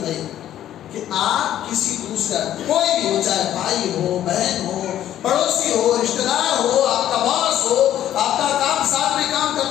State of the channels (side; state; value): right; quieter; 11.8 dB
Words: کہ آپ کسی دوسرا کوئی بھی ہو، چاہے بھائی ہو، بہن ہو، پڑوسی ہو، رشتہ دار ہو، آپ کا باس ہو، آپ کا کام ساتھ میں کام